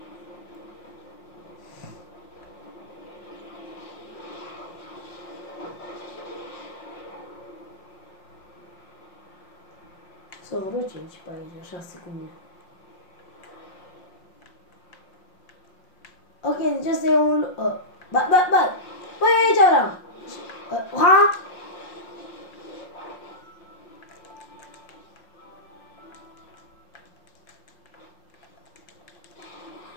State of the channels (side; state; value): right; late; 5.5 ms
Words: Să vreo 5 pe aici, 6 cu mine. Ok, deci asta e un... Băi, aici vreau! Ha?